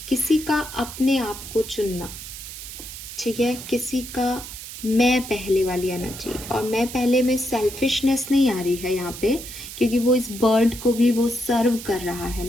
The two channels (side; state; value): right; noise; hiss, 11 dB below the sound